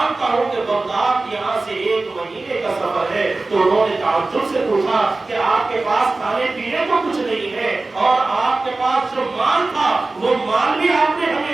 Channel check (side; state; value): left; quieter; 3.3 dB